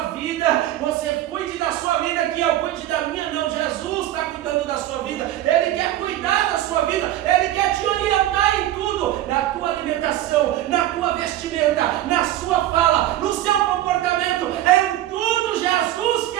vida, você cuide da sua vida, que eu cuide da minha. Não, Jesus está cuidando da sua vida, Ele quer cuidar da sua vida, Ele quer te orientar em tudo, na tua alimentação, na tua vestimenta, na sua fala, no seu comportamento, em tudo Jesus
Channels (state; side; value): quieter; left; 13.8 dB